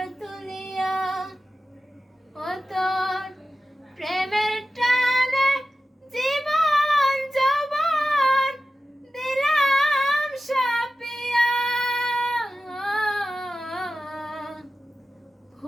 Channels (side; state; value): both; normal; correlation 0.94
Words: তুলিয়া। ও তোর প্রেমের টানে জীবন যৌবন দিলাম সাপিয়া,